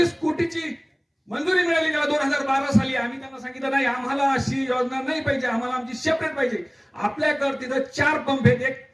कोटीची मंजुरी मिळाली त्याला 2012 साली. आम्ही त्यांना सांगितलं नाही, आम्हाला अशी योजना नाही पाहिजे, आम्हाला आमची सेपरेट पाहिजे. आपल्याकडे तिथं 4 पंप आहेत, एक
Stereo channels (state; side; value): identical; both; correlation 1.00